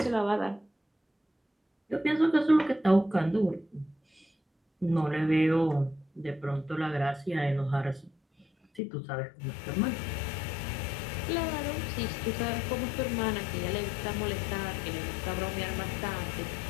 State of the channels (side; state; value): right; drops out; at 8.8 s